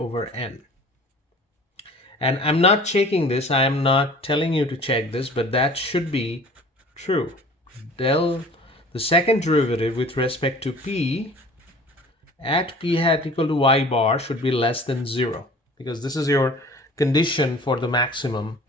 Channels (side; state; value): both; normal; correlation 0.46